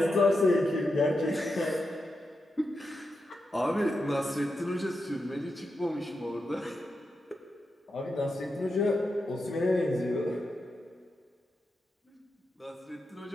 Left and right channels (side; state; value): both; normal; correlation 0.87